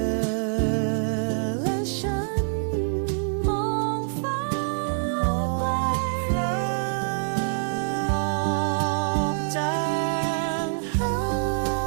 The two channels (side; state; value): left; silent; digital silence